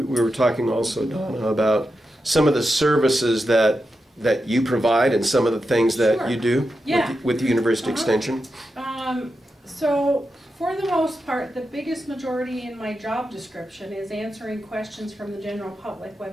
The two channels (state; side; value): normal; both; correlation 0.88